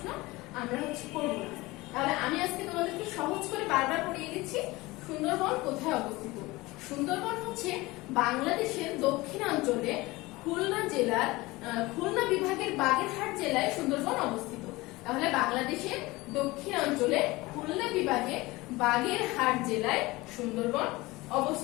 আমরা করবো না। তাহলে আমি আজকে তোমাদেরকে সহজ করে বারবার পড়িয়ে দিচ্ছি। সুন্দরবন কোথায় অবস্থিত? সুন্দরবন হচ্ছে বাংলাদেশের দক্ষিণাঞ্চলে খুলনা জেলার খুলনা বিভাগের বাগেরহাট জেলায় সুন্দরবন অবস্থিত। তাহলে বাংলাদেশের দক্ষিণাঞ্চলে খুলনা বিভাগে বাগেরহাট জেলায় সুন্দরবন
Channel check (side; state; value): right; quieter; 21.1 dB